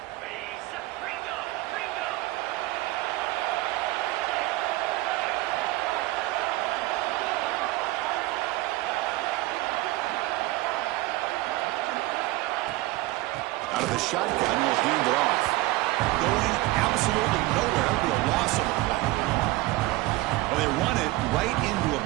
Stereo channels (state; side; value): quieter; left; 19.3 dB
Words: Out of the shotgun, will hand it off. Going absolutely nowhere. That would be a loss of a play. Well, they run it right into a